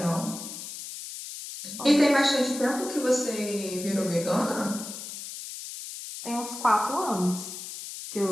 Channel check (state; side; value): noise; left; hiss, 10 dB below the sound